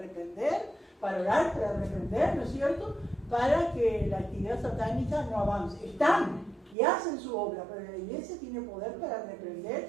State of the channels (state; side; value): drops out; left; at 6.8 s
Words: para orar, para reprender, ¿no es cierto?, para que la actividad satánica no avance. Están y hacen su obra, pero la iglesia tiene poder para reprender